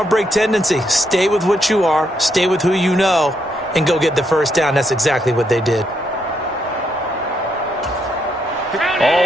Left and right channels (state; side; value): normal; both; correlation 0.77